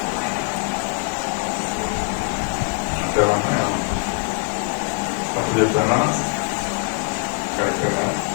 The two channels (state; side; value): quieter; right; 39.2 dB